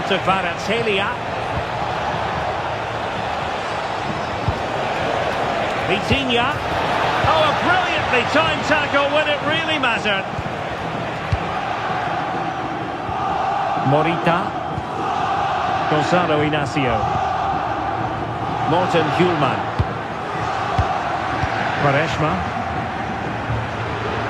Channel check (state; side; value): identical; both; correlation 1.00